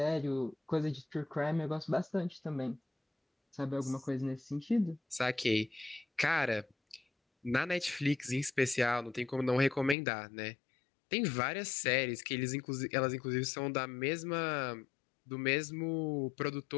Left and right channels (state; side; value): drops out; right; at 10.0 s